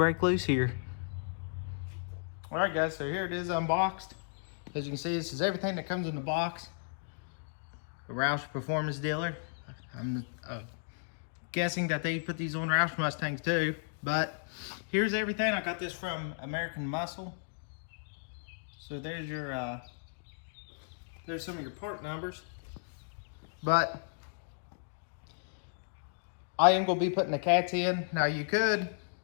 loose here. All right guys, so here it is unboxed. As you can see, this is everything that comes in the box. A Roush Performance dealer. I'm guessing that they put these on Roush Mustangs too, but here's everything. I got this from American Muscle. So there's your, there's some of your part numbers. But I am gonna be putting the cats in. Now you could,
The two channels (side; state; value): right; silent; digital silence